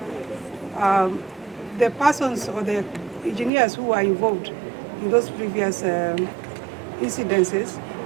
the persons or the engineers who are involved in those previous incidences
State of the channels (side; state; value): left; drops out; at 3.5 s